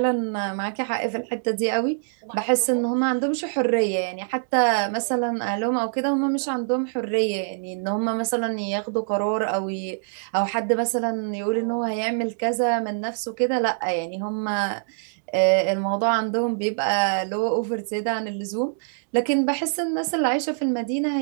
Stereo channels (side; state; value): left; silent; digital silence